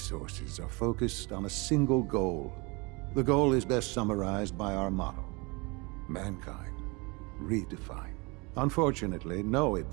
are focused on a single goal. The goal is best summarized by our motto: mankind, redefined. Unfortunately, no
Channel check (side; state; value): left; quieter; 27.7 dB